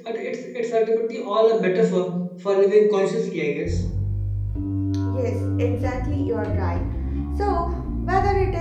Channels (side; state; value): both; identical; correlation 1.00